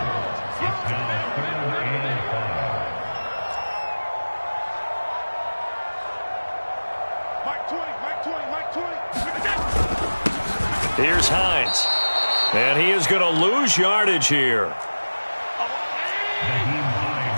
Here's Hines. And he is going to lose yardage here.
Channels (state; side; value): inverted; both; correlation -1.00